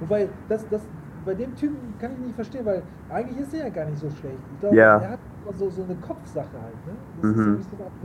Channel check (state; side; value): identical; both; correlation 1.00